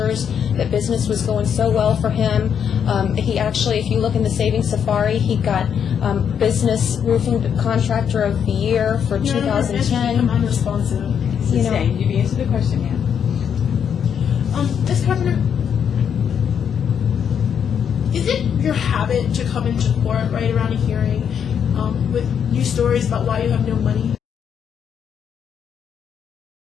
that business was going so well for him. He actually, if you look in the Savings Safari, he got Business Roofing Contractor of the Year for 2010. I'm unresponsive. Sustained. You've answered the question, ma'am. Ms. Carpenter, is it your habit to come into court right around a hearing with new stories about why you have no money?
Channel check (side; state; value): right; quieter; 7.9 dB